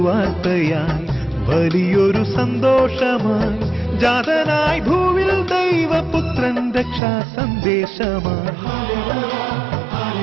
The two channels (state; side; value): drops out; left; at 7.0 s